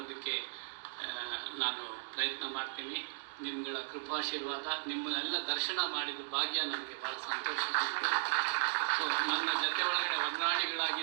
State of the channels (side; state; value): left; silent; digital silence